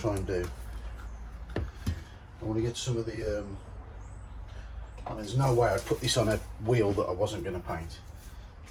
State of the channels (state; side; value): identical; both; correlation 1.00